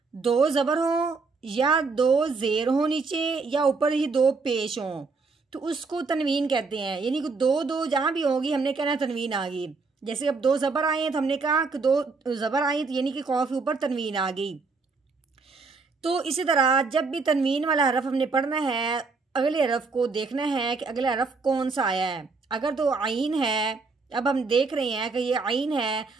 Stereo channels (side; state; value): left; quieter; 4.3 dB